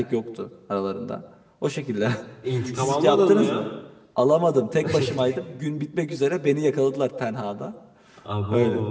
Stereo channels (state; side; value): identical; both; correlation 1.00